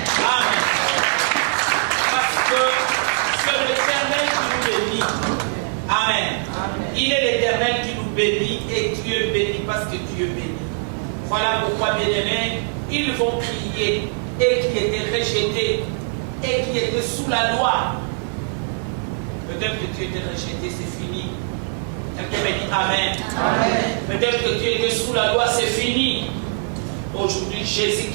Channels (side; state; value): left; silent; 64 dB below the other